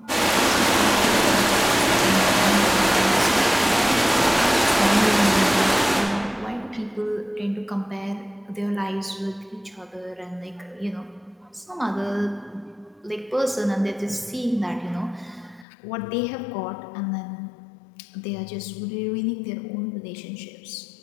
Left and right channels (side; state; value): right; drops out; at 15.7 s